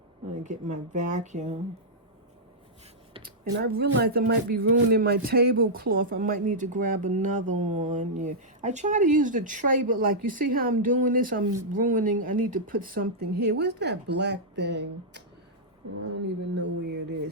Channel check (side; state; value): both; normal; correlation -0.09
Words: I'm going to get my vacuum. And I realized I might be ruining my tablecloth. I might need to grab another one. Yeah, I try to use the tray, but like, you see how I'm doing this? I'm ruining. I need to put something here. Where's that black thing? I don't even know where it